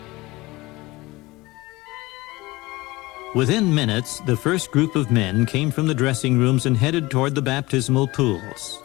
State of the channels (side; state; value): right; quieter; 20.9 dB